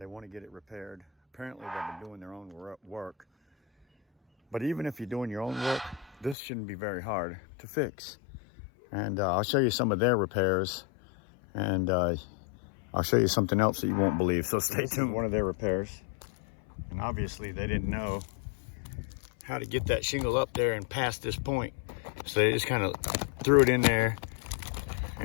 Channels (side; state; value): right; drops out; at 6.4 s